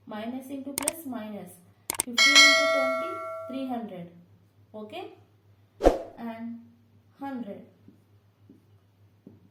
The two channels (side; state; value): both; identical; correlation 1.00